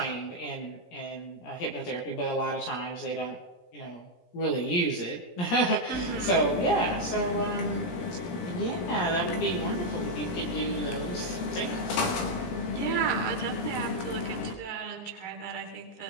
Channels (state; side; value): late; right; 17 ms